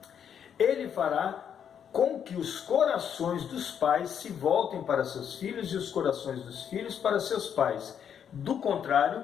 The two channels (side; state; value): right; quieter; 8.3 dB